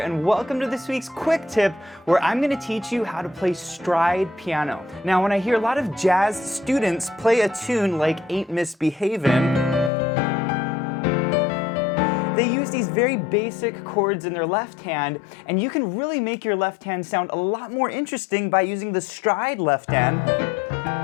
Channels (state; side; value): drops out; right; at 9.9 s